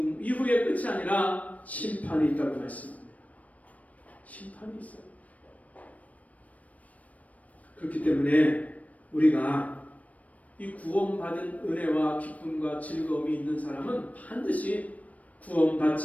이후의 끝이 아니라 심판이 있다고 말씀합니다. 심판이 있어요. 그렇기 때문에 우리가 이 구원받은 은혜와 기쁨과 즐거움이 있는 사람은 반드시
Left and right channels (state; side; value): late; right; 0.069 ms